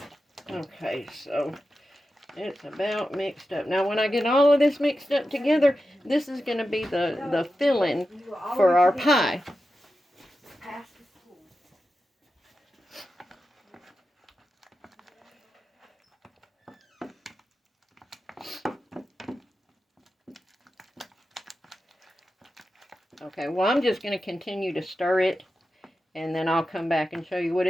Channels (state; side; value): normal; both; correlation 0.91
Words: Okay, so it's about mixed up. Now, when I get all of this mixed up together, this is going to be the filling for our pie. Okay, well, I'm just going to continue to stir it, and then I'll come back and show you what